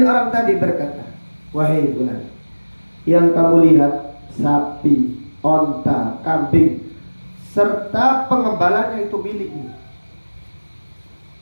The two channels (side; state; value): both; inverted; correlation -1.00